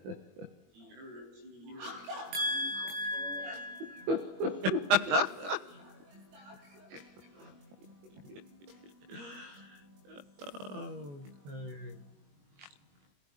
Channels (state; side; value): late; left; 21 ms